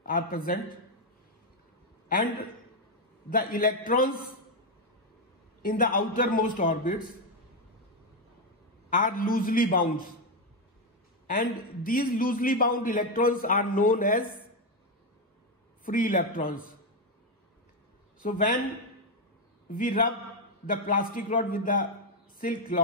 are present, and the electrons in the outermost orbits are loosely bound, and these loosely bound electrons are known as free electrons. So when we rub the plastic rod with the silk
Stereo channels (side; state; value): both; normal; correlation 0.05